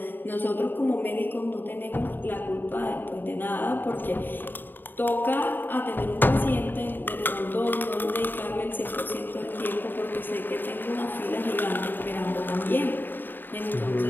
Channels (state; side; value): late; right; 0.093 ms